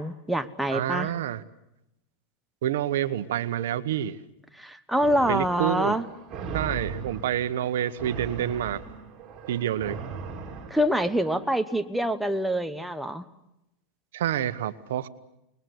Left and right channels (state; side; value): quieter; left; 3.7 dB